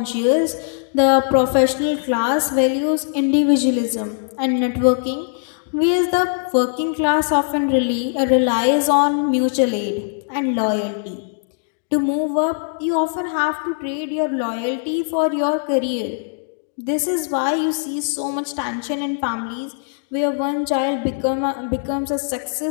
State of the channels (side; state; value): right; silent; digital silence